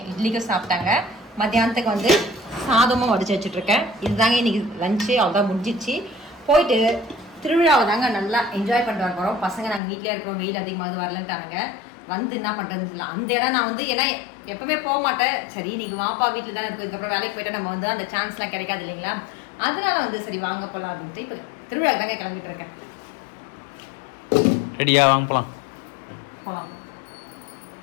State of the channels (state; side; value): drops out; right; at 9.8 s